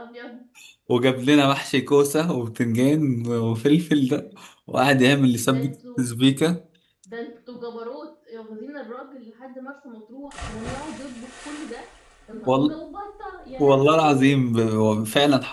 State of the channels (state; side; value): identical; both; correlation 1.00